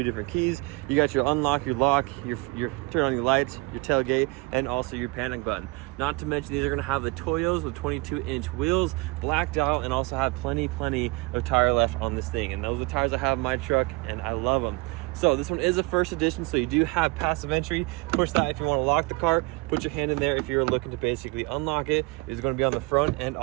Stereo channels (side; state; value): left; quieter; 24.6 dB